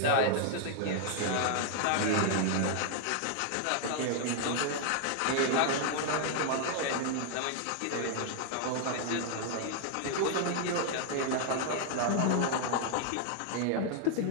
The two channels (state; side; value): different; both; correlation 0.00